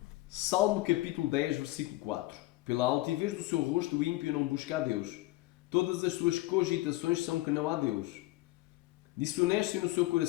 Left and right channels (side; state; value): right; quieter; 18.9 dB